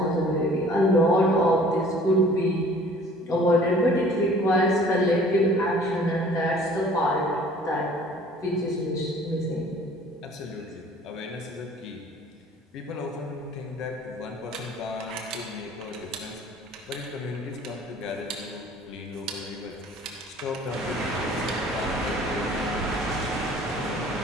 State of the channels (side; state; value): both; normal; correlation 0.51